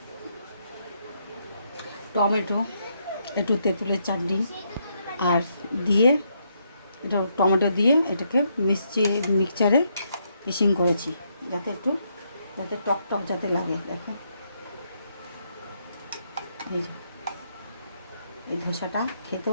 টমেটো, একটু তেঁতুলের চাটনি আর দিয়ে, এটা টমেটো দিয়ে এটাকে মিক্সচারে মিক্সিং করেছি, যাতে টক টক যাতে লাগে। দেখো এই যে এই ধোসাটা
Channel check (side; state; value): both; inverted; correlation -0.76